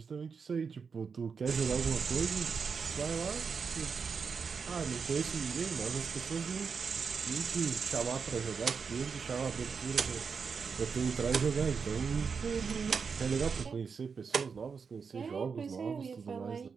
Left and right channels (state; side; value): quieter; left; 5.7 dB